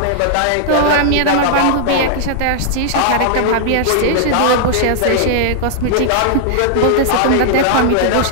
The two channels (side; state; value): both; different; correlation -0.01